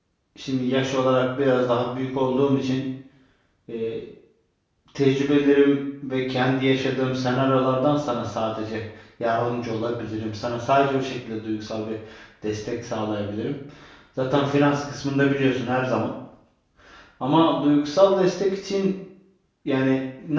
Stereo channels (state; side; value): identical; both; correlation 1.00